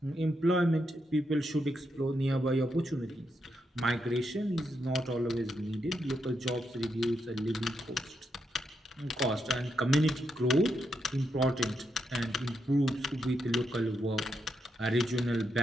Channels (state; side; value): normal; both; correlation 0.82